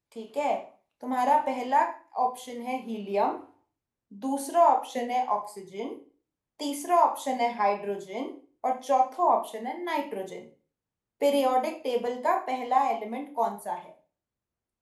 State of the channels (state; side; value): identical; both; correlation 1.00